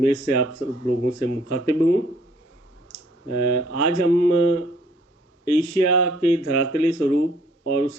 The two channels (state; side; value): normal; both; correlation 0.62